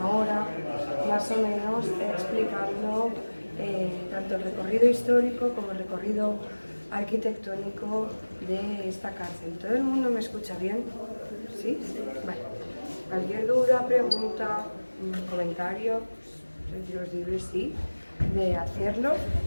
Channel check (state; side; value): inverted; both; correlation -1.00